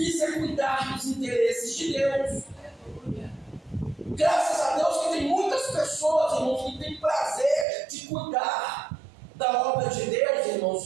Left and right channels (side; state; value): left; drops out; at 7.7 s